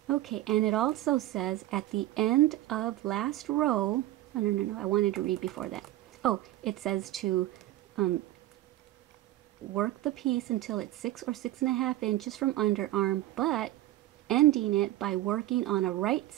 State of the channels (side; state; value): left; quieter; 15.3 dB